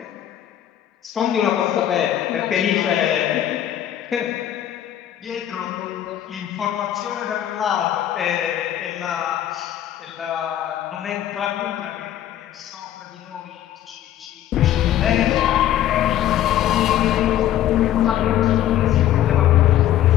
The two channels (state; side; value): quieter; right; 11.7 dB